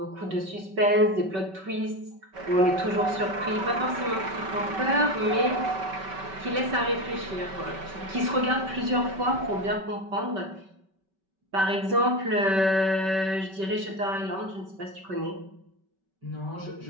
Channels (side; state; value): left; late; 5.2 ms